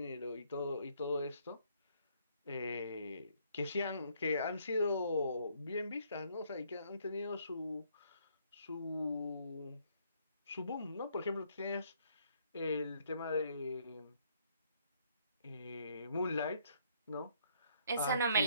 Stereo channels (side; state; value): both; inverted; correlation -0.67